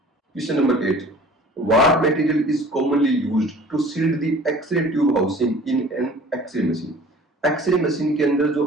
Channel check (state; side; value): normal; both; correlation 0.47